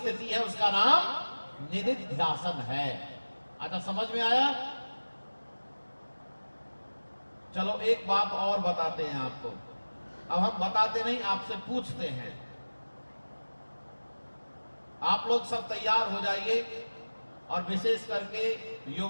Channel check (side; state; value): both; inverted; correlation -1.00